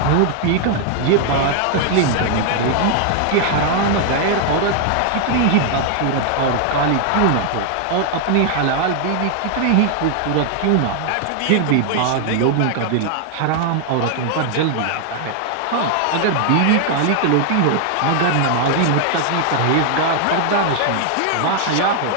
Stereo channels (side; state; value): both; different; correlation 0.00